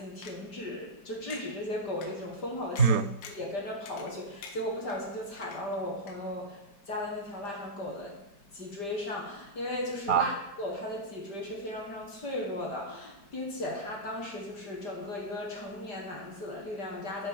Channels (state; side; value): late; right; 5.0 ms